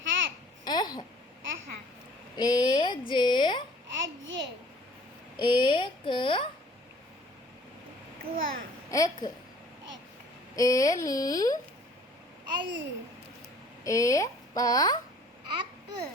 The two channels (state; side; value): normal; both; correlation 0.53